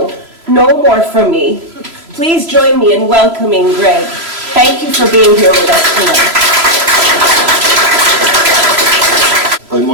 no more from me. Please join me in welcoming Greg. Thank you for being here with us tonight. I'm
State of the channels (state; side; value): late; left; 3.0 ms